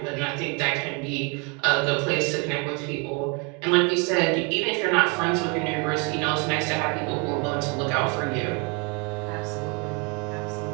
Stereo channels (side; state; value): left; quieter; 32.8 dB